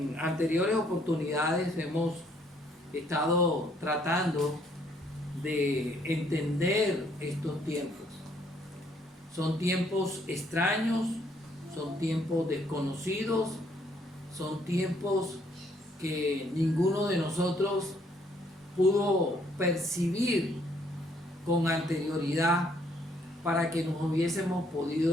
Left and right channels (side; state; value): both; normal; correlation 0.67